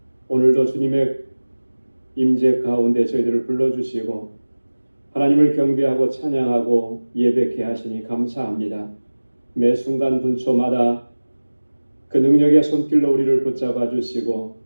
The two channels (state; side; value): inverted; both; correlation -1.00